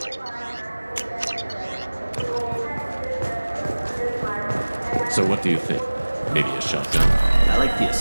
So what do you think? Maybe a shotgun? I like the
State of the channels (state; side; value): inverted; both; correlation -1.00